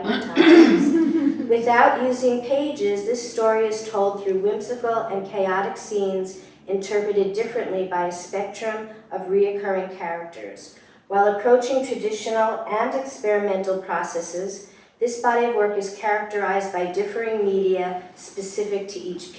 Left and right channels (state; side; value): identical; both; correlation 1.00